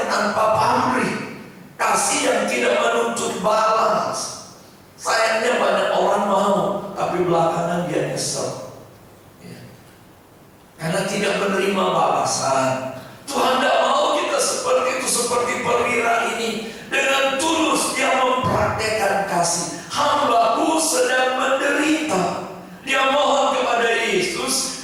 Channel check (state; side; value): identical; both; correlation 1.00